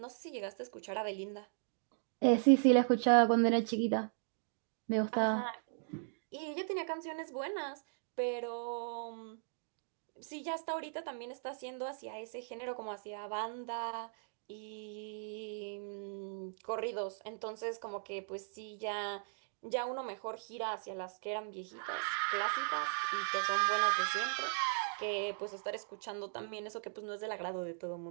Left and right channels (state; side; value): silent; left; digital silence